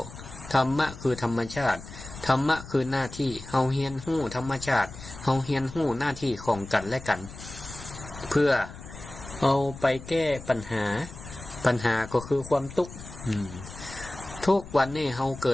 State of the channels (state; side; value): noise; left; rumble, 14 dB below the sound